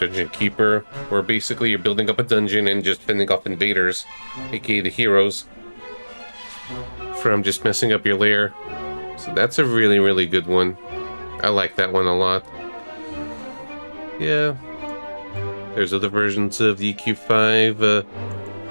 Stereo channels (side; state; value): both; inverted; correlation -1.00